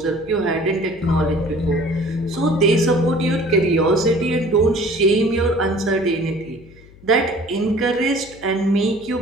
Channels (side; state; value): left; noise; hum, 23 dB below the sound